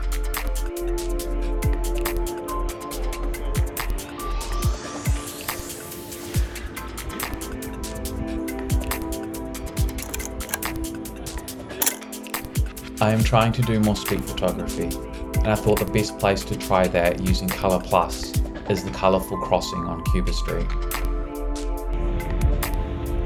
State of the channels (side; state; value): both; identical; correlation 1.00